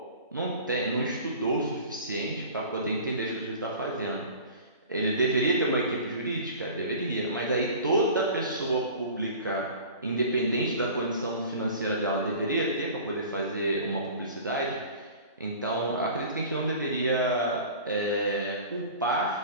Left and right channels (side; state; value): both; inverted; correlation -0.41